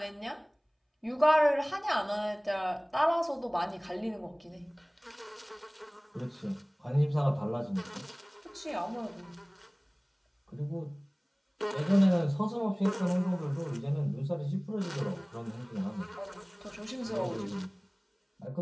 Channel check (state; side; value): identical; both; correlation 1.00